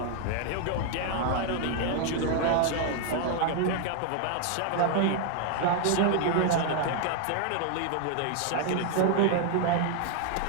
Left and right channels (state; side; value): different; both; correlation 0.00